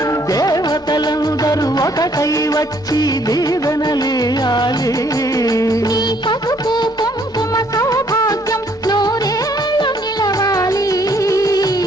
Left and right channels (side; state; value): both; normal; correlation 0.65